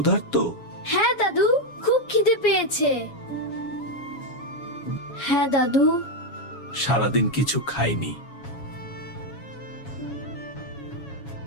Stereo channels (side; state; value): right; late; 7.2 ms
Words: হ্যাঁ দাদু, খুব খিদে পেয়েছে। হ্যাঁ দাদু। সারাদিন কিছু খাইনি।